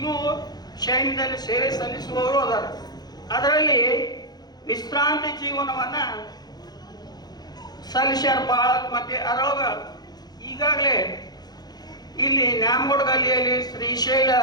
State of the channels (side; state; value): right; late; 0.19 ms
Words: ಸೈನ್ಯದಲ್ಲಿ ಸೇವೆ ಸಲ್ಲಿಸುವವರು ಅದಾರ. ಅದರಲ್ಲಿ ವಿಶ್ರಾಂತಿ ಜೀವನವನ್ನು ಸಲ್ಲಿಸ್ಯಾರ ಭಾಳ. ಮತ್ತೆ ಅದರೊಳಗೆ ಈಗಾಗಲೇ ಇಲ್ಲಿ ನ್ಯಾಮಗೌಡ ಗಲ್ಲಿಯಲ್ಲಿ ಶ್ರೀಶೈಲ